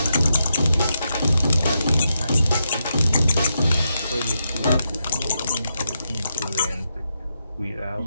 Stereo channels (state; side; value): inverted; both; correlation -0.84